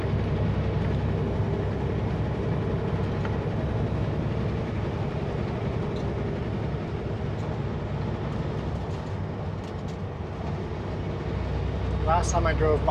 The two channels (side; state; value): both; identical; correlation 1.00